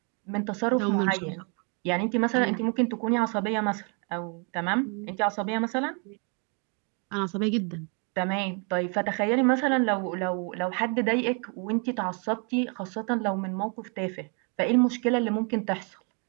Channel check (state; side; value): quieter; left; 37.3 dB